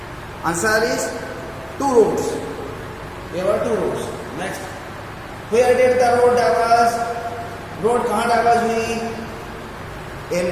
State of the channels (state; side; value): identical; both; correlation 1.00